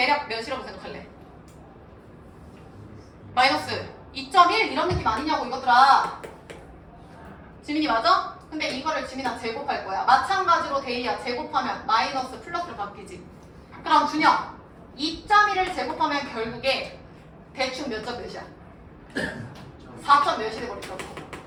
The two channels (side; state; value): both; identical; correlation 1.00